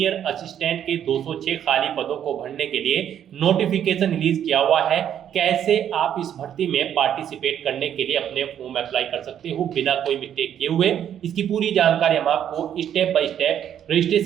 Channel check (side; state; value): left; quieter; 9.7 dB